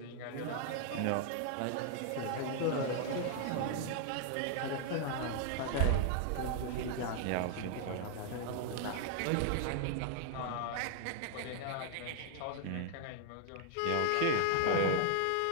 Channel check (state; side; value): different; both; correlation 0.00